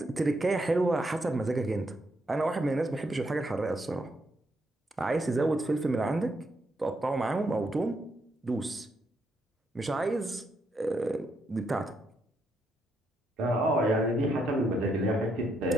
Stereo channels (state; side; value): normal; both; correlation 0.78